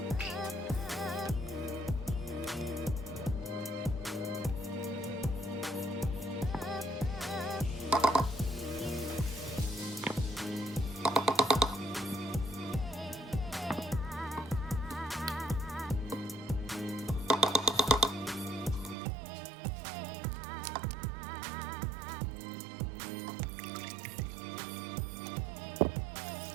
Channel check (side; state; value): left; drops out; at 18.9 s